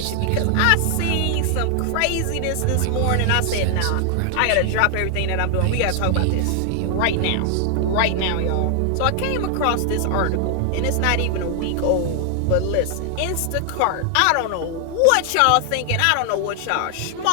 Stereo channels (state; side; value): different; both; correlation 0.00